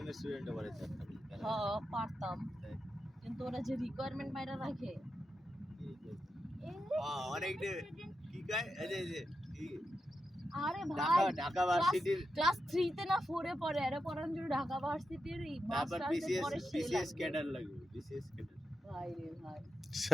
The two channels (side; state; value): both; normal; correlation 0.88